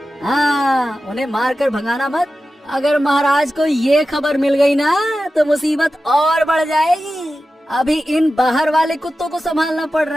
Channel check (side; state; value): both; normal; correlation 0.93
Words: हाँ, उन्हें मारकर भगाना मत। अगर महाराज को ये खबर मिल गई ना तो मुसीबत और बढ़ जाएगी। अभी इन बाहर वाले कुत्तों को संभालना पड़